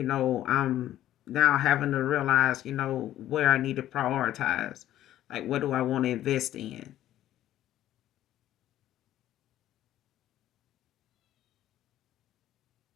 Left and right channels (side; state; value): right; quieter; 12.9 dB